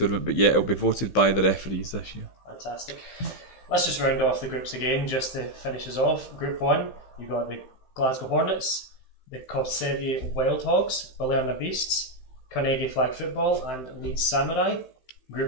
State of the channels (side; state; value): right; late; 15 ms